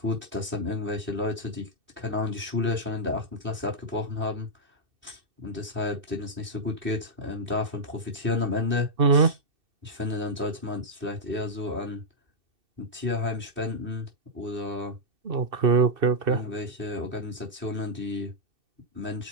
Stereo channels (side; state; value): left; late; 2.6 ms